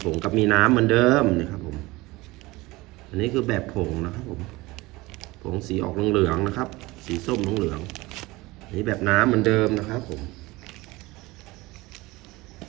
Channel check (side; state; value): left; quieter; 21.0 dB